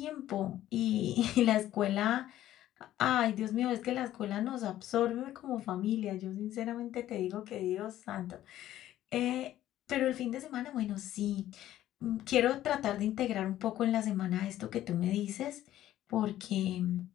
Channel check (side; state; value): right; quieter; 13.2 dB